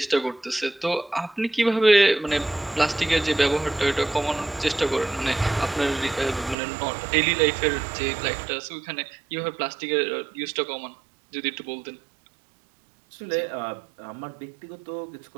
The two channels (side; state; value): left; drops out; at 6.6 s